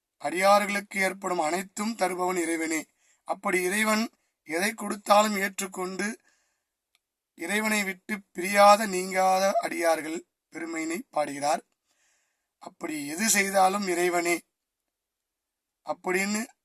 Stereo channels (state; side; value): identical; both; correlation 1.00